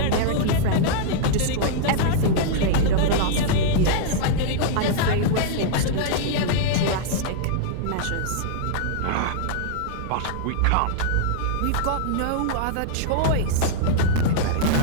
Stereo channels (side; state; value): both; different; correlation -0.01